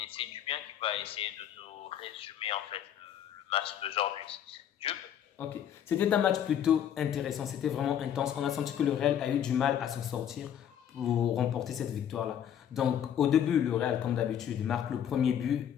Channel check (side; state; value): right; quieter; 9.6 dB